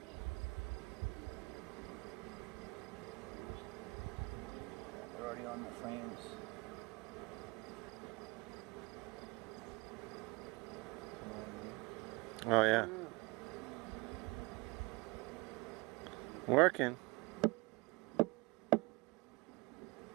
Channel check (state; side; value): quieter; left; 25.1 dB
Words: They're already on the frames. Oh, yeah. Working.